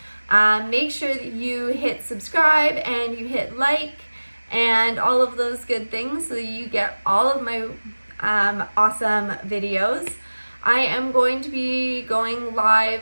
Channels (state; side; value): inverted; both; correlation -1.00